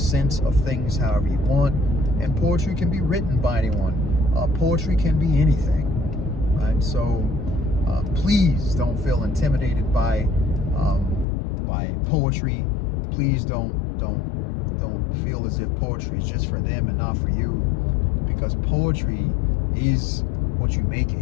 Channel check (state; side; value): drops out; right; at 11.2 s